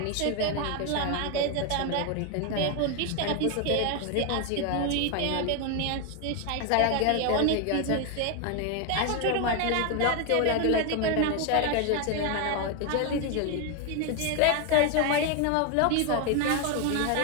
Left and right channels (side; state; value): both; different; correlation 0.01